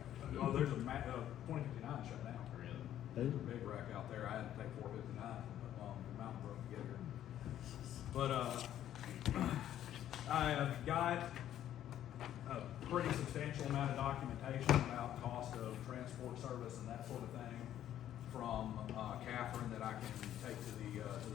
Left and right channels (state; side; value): quieter; right; 11.5 dB